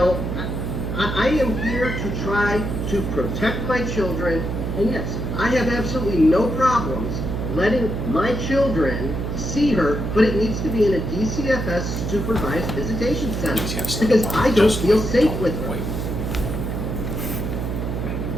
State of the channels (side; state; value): right; noise; hum, 3 dB below the sound